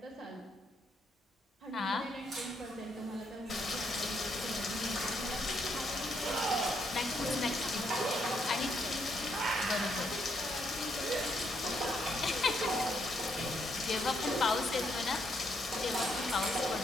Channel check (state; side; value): normal; both; correlation 0.75